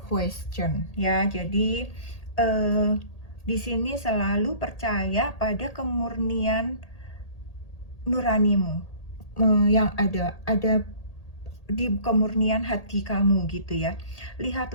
question. Ya, jadi di sini selalu percaya pada kemurnian nuranimu yang ada di kemurnian hati kamu gitu ya.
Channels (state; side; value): late; right; 1.8 ms